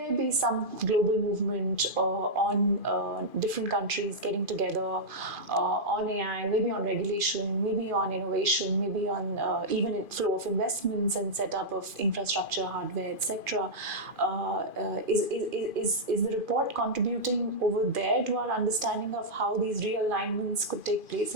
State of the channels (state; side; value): late; left; 2.5 ms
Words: be some global movement on different countries getting together on AI, maybe on regulation, maybe on innovation, maybe on even flow of investments and setup of infrastructure, hardware, etc. Is the report contributing over there to our understanding of how these realignments could take place